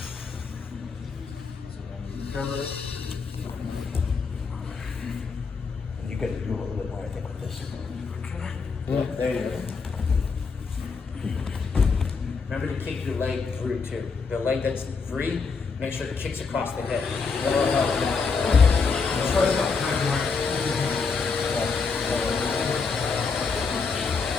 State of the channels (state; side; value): quieter; right; 4.9 dB